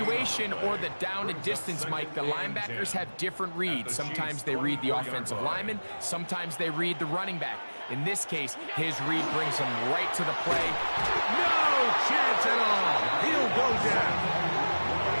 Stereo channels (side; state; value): both; inverted; correlation -1.00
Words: or the down and distance, Mike, the linebackers have different reads. Sometimes they read the offensive lineman. Sometimes they read the running back. In this case, his read brings him right to the play. No chance at all. He'll go down.